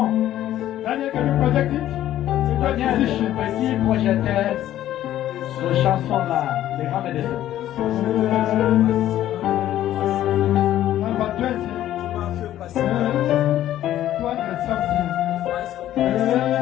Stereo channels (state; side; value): quieter; right; 12.8 dB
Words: Daniel, can you project it? C'est quoi Daniel, musician? petit projecteur, cette chanson-là, des grands médecins. Number 20. 200 something.